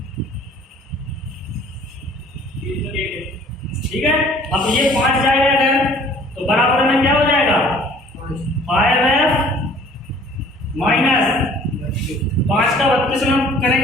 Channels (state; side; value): normal; both; correlation 0.53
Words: ठीक है, अब ये 5 जाएगा अगर, तो बराबर में क्या हो जाएगा? 5F माइनस 5 का 32 में